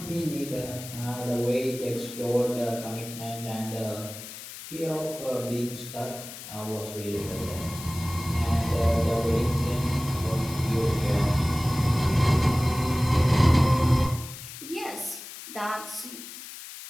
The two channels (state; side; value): noise; left; hiss, 13 dB below the sound